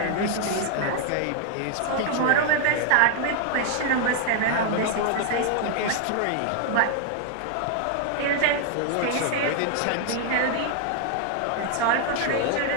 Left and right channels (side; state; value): both; different; correlation 0.00